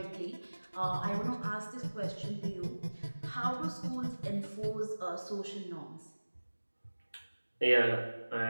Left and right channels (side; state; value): both; inverted; correlation -1.00